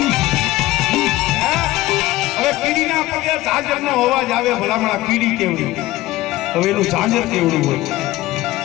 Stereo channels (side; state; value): right; quieter; 17.3 dB